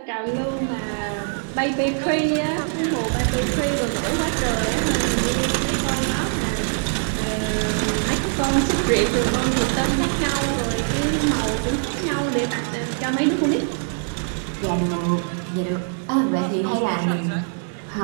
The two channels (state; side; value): silent; left; 60 dB below the other